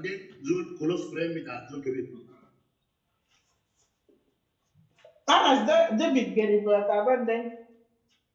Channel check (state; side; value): identical; both; correlation 1.00